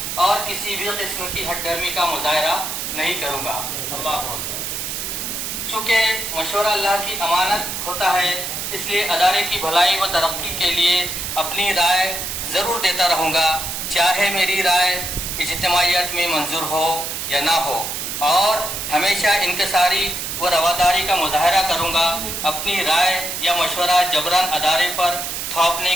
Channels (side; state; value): right; noise; hiss, 4 dB below the sound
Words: اور کسی بھی قسم کی ہٹ درمی کا مظاہرہ نہیں کروں گا. اللہ اکبر. چونکہ مشورہ اللہ کی امانت ہوتا ہے، اس لیے ادارے کی بھلائی و ترقی کے لیے اپنی رائے ضرور دیتا رہوں گا، چاہے میری رائے اجتماعیت میں منظور ہو یا نہ ہو، اور ہمیشہ انکساری و رواداری کا مظاہرہ کروں گا. اپنی رائے یا مشورہ جبراً ادارے پر تھوپنے